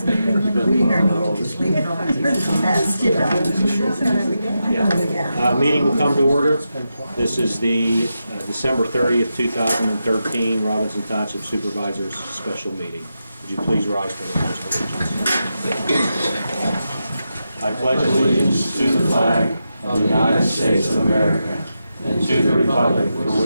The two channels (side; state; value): both; inverted; correlation -0.88